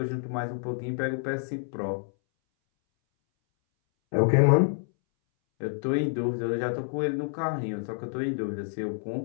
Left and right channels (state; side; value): silent; right; 59 dB below the other